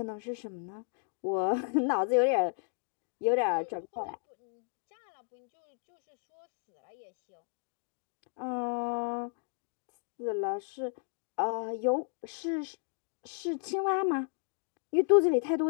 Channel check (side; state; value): right; silent; 55 dB below the other